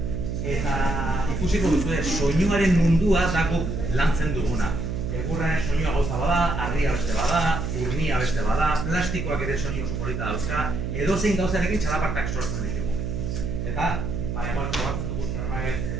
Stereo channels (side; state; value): right; noise; hum, 3 dB below the sound